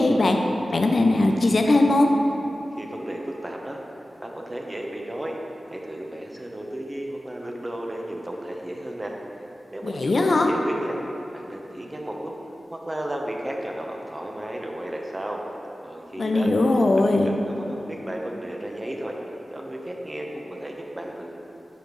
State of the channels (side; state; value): both; normal; correlation 0.95